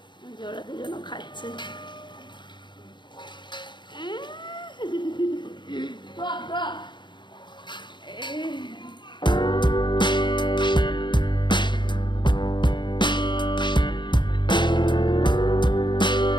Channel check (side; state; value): right; late; 0.22 ms